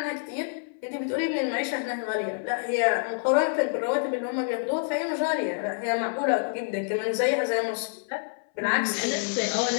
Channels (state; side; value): silent; right; 59 dB below the other